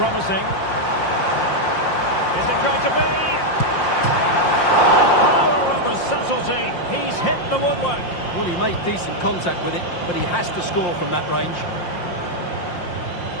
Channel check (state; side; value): late; right; 5.7 ms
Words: Is it going to be? The power of a subtlety. He's hit the woodwork. Well, he made decent contact with it, but he has to score from that range.